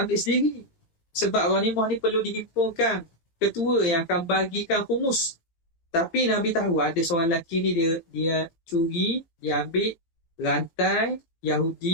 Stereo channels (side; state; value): right; late; 18 ms